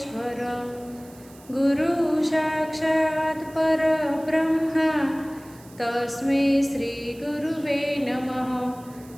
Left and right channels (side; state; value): right; noise; hiss, 24 dB below the sound